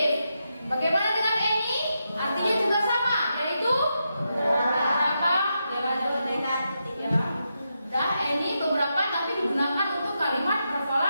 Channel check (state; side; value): inverted; both; correlation -0.85